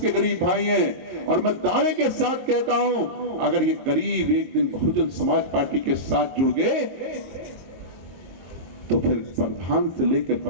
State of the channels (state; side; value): late; left; 22 ms